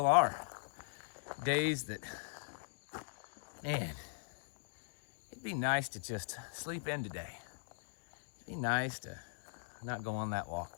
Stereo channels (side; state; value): right; silent; digital silence